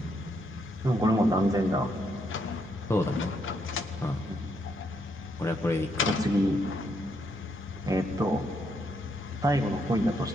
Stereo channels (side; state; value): both; normal; correlation 0.76